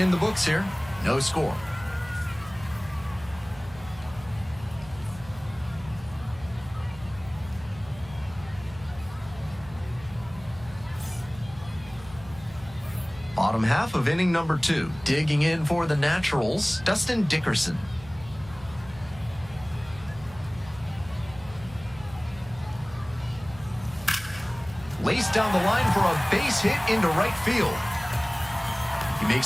the books here, no score. Bottom half of inning number 2. Digging in for the Naturals, Dustin Dickerson. Laced down the line for a base hit into right field. He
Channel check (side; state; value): right; noise; hum, 18 dB below the sound